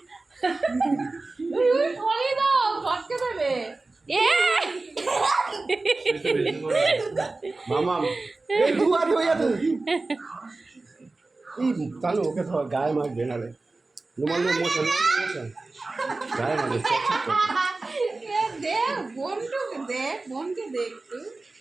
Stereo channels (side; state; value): left; quieter; 3.4 dB